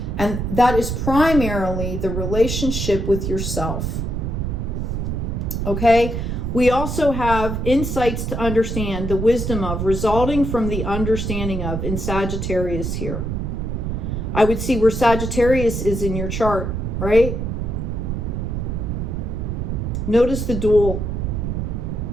And that is primarily the relationship with yourself. Okay, we also have insights to understand, the wisdom of, resulting from the understanding of, in Sagittarius here. I would see where Sagittarius is in your chart, right? Notice the dual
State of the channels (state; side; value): noise; right; rumble, 2 dB below the sound